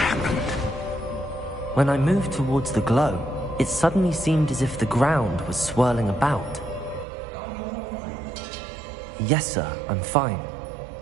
When I moved towards the glow, it suddenly seemed as if the ground was swirling about. Are you all right? Yes, sir, I'm fine.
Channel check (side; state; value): left; drops out; at 7.1 s